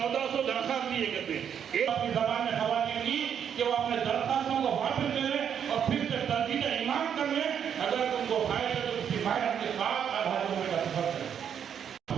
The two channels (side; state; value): left; quieter; 8.3 dB